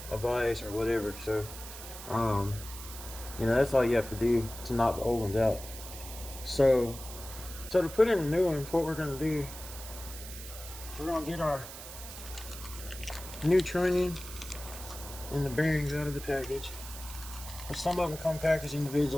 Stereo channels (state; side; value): noise; right; hiss, 12 dB below the sound